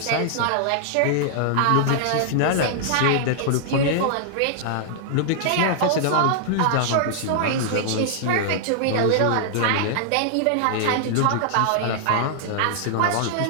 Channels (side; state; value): both; different; correlation -0.01